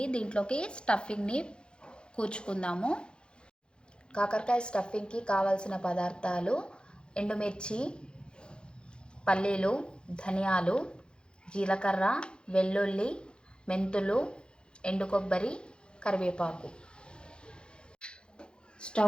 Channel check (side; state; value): right; late; 0.052 ms